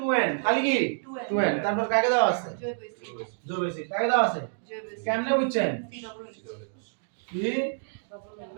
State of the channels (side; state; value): left; silent; digital silence